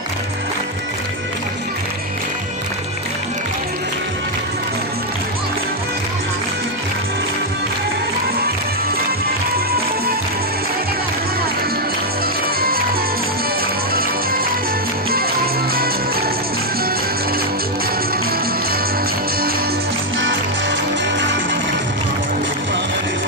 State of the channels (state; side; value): normal; both; correlation 0.01